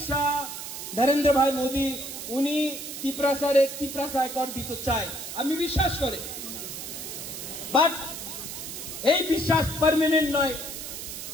শাহ, নরেন্দ্র ভাই মোদী উনি ত্রিপুরা কর দিতে চায়, আমি বিশ্বাস করি, বাট এই বিশ্বাস পার্মানেন্ট নয়।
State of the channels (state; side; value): noise; right; hiss, 8 dB below the sound